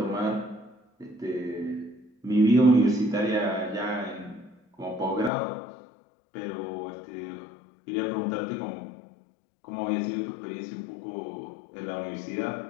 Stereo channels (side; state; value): right; drops out; at 5.3 s